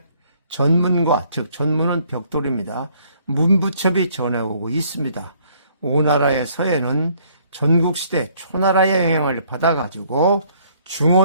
전문과, 즉 전문은 벽돌입니다. 문부첩이 전해오고 있습니다. 오나라의 서예는 전국시대 초나라의 영향을 받아가지고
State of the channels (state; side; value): inverted; both; correlation -0.63